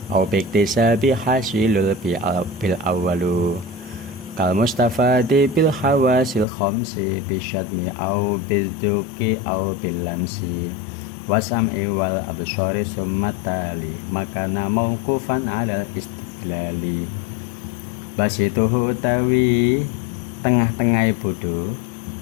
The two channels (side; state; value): right; drops out; at 6.5 s